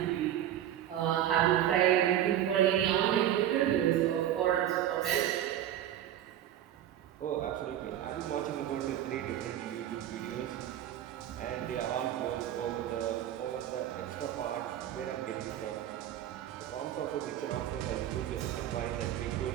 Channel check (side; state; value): left; quieter; 11.5 dB